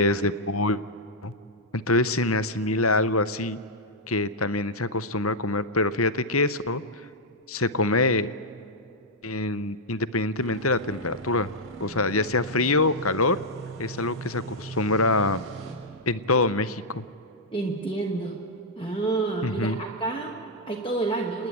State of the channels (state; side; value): normal; both; correlation -0.05